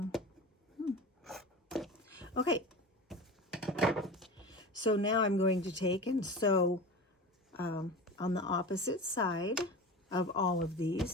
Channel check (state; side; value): normal; both; correlation 0.32